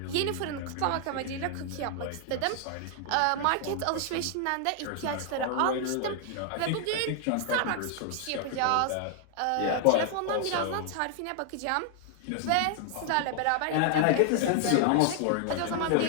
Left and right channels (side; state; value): both; different; correlation 0.00